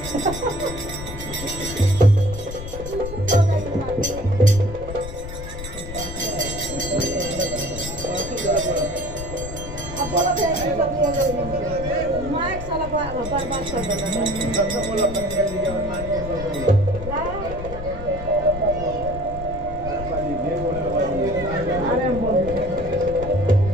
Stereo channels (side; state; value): left; noise; rumble, 9 dB below the sound